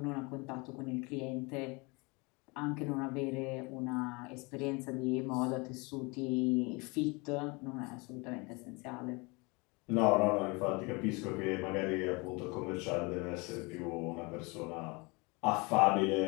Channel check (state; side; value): quieter; right; 27.8 dB